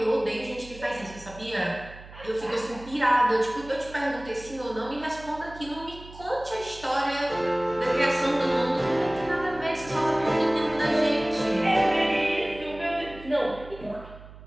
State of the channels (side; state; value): right; noise; hum, 18 dB below the sound